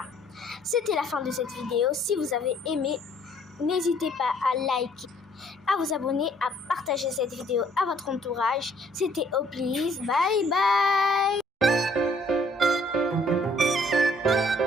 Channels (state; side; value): normal; both; correlation 0.62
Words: c'était la fin de cette vidéo. Si vous avez aimé, n'hésitez pas à liker, à vous abonner, à partager cette vidéo à votre entourage. C'était Oplis. Bye bye.